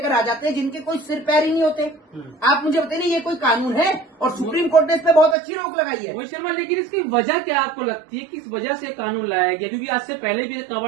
आ जाते हैं जिनके कोई सिर पैर ही नहीं होते। आप मुझे बताइए ये कोई कानून है? और सुप्रीम कोर्ट ने इस पर बहुत अच्छी रोक लगाई है। मोहित शर्मा, लेकिन इसकी वजह क्या आपको लगती है, किस वजह से कानून लाया गया? क्योंकि आज से पहले भी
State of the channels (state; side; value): drops out; left; at 5.4 s